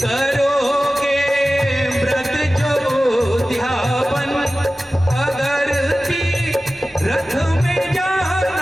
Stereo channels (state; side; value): normal; both; correlation 0.95